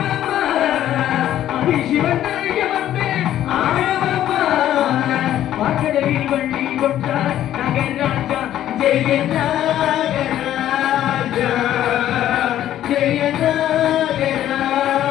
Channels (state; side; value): quieter; right; 12.1 dB